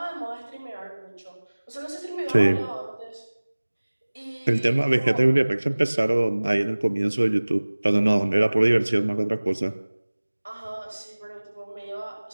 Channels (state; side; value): inverted; both; correlation -1.00